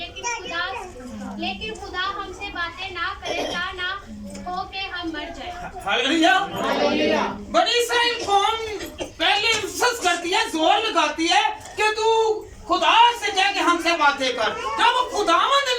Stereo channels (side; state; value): both; identical; correlation 1.00